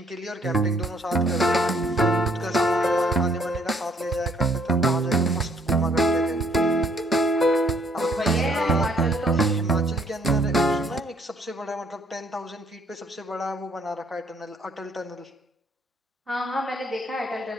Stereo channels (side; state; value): both; normal; correlation 0.64